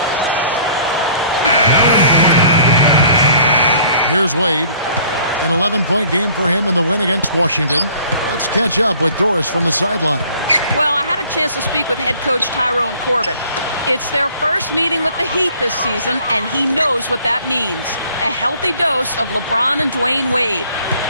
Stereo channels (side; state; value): both; inverted; correlation -0.54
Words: Here's Wade. An 11-point game for him in the win against Washington. Let's catch up with Doris from the sideline. Well, I had a chance to speak with head coach Tyrone Corbin. It's their first meeting with the Heat this season, and he knows what that means. A healthy dose of LeBron and Dwayne Wade.